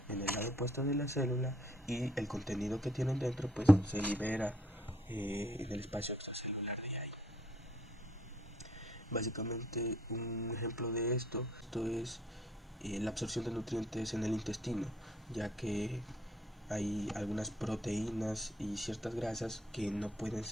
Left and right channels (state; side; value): normal; both; correlation 0.64